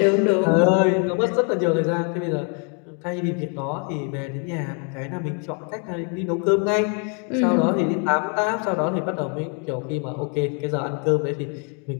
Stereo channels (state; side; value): quieter; right; 38.8 dB